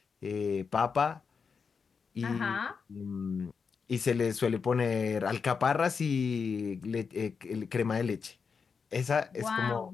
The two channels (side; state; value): right; quieter; 5.6 dB